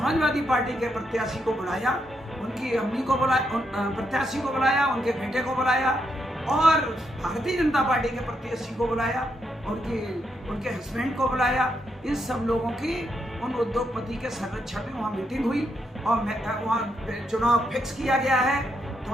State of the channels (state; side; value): normal; both; correlation 0.80